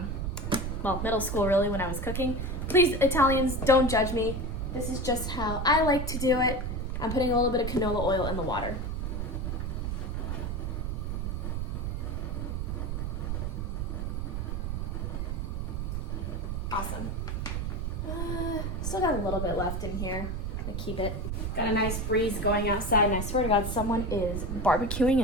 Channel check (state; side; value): noise; right; rumble, 2 dB below the sound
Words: middle school really, when I was cooking. Please, Italians, don't judge me. This is just how I like to do it. I'm putting a little bit of canola oil in the water. Awesome. Still got a little bit left in here. I'm gonna keep it. Got a nice breeze going outside, and I swear to God, someone is barbecuing